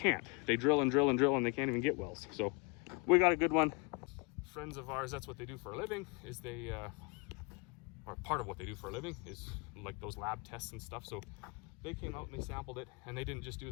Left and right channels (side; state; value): right; quieter; 29.4 dB